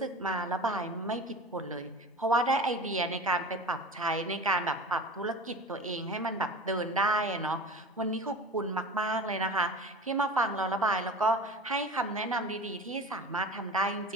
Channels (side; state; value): both; normal; correlation 0.35